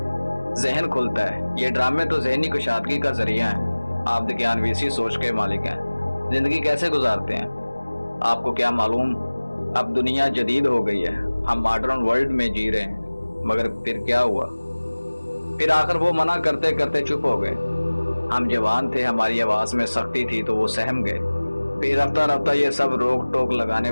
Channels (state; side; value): inverted; both; correlation -1.00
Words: जहन खुलता है। ये ड्रामे तो जहनी कुशादगी का जरिया है। आप ज्ञानवीसी सोच के मालिक हैं, जिंदगी कैसे गुजारते हैं आपको क्या मालूम। अब दुनिया जदीद हो गई है, हम मॉडर्न वर्ल्ड में जी रहे हैं, मगर फिर क्या हुआ, फिर आखिर वो मना करते करते चुप हो गए। हम जवान थे, हमारी आवाज में सख्ती थी तो वो सहम गए। फिर रफ्ता रफ्ता ये सब रोक टोक लगाने